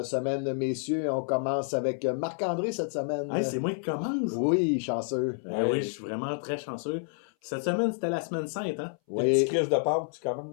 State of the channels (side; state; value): right; silent; 58 dB below the other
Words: semaine, messieurs. On commence avec Marc-André cette semaine. Hey, c'est moi qui commence. Oui, chanceux. Oui, je suis vraiment très chanceux. Cette semaine, c'était la semaine sainte, hein? Des Oui. petits crises de Pâques, tu